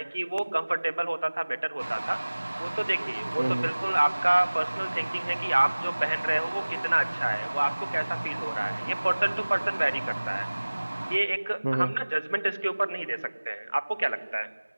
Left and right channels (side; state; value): both; inverted; correlation -1.00